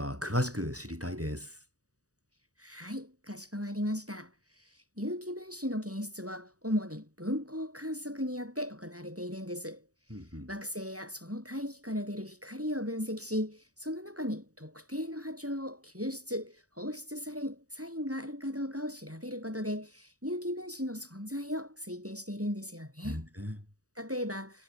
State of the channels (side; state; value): left; late; 0.66 ms